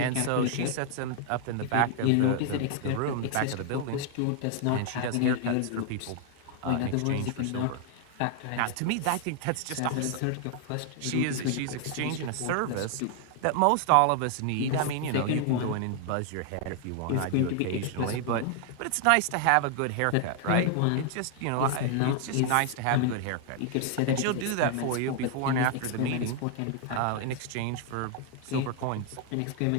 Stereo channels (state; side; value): different; both; correlation 0.00